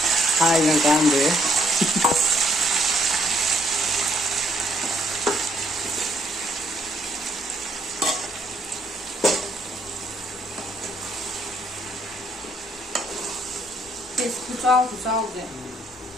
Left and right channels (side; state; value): both; normal; correlation 0.70